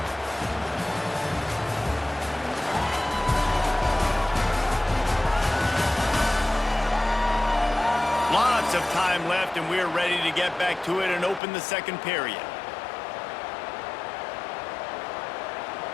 Lots of time left, and we're ready to get back to it and open the second period.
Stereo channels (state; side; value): drops out; right; at 11.4 s